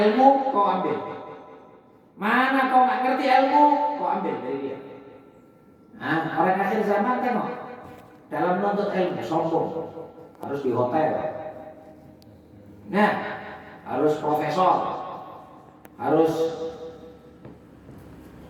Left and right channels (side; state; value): both; identical; correlation 1.00